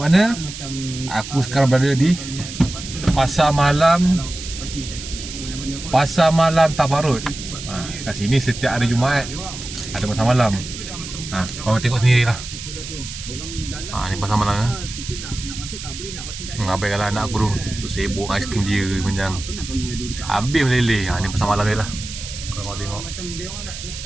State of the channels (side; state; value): right; noise; hiss, 10 dB below the sound